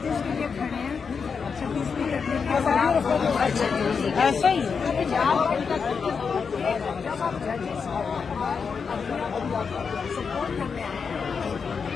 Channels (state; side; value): quieter; right; 5.8 dB